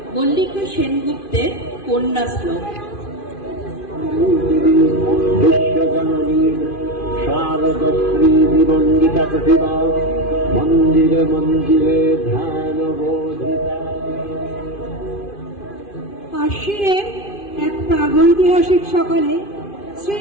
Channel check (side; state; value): right; late; 2.5 ms